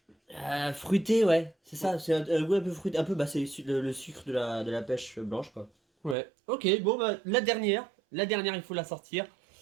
fruité, ouais. C'est ça, c'est un goût un peu fruité. Un peu, bah, c'est le sucre de la pêche blanche, quoi. Ouais. Ok, bon, bah, la dernière. La dernière, il faut la sortir.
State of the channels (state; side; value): drops out; left; at 6.2 s